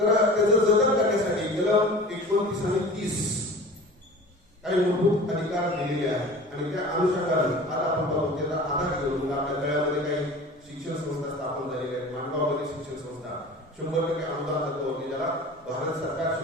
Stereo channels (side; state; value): both; normal; correlation 0.39